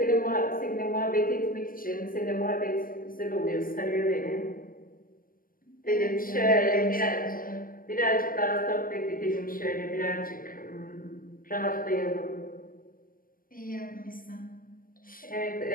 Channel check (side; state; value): right; late; 0.41 ms